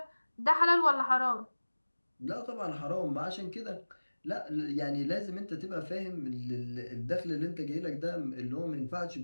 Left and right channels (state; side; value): inverted; both; correlation -1.00